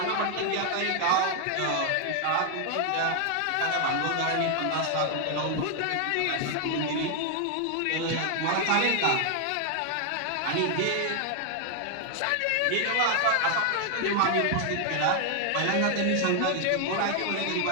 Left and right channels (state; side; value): different; both; correlation 0.00